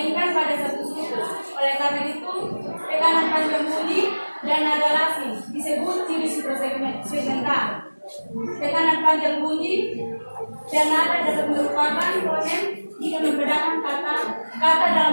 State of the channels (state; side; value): inverted; both; correlation -1.00